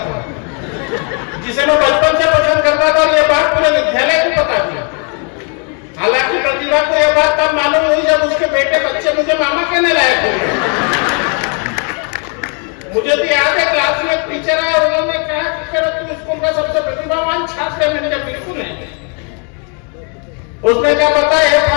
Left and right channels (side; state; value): right; quieter; 38.5 dB